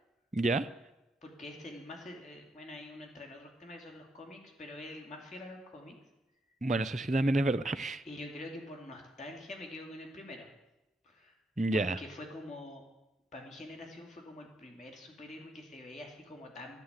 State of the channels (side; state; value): both; normal; correlation 0.78